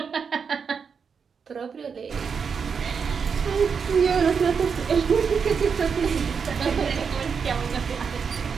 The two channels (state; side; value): quieter; left; 6.1 dB